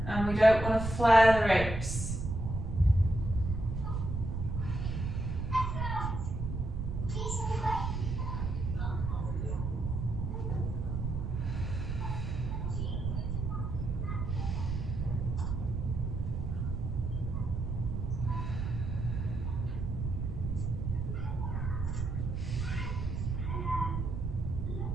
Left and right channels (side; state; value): right; noise; rumble, 3 dB below the sound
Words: and we don't want to flare the ribs.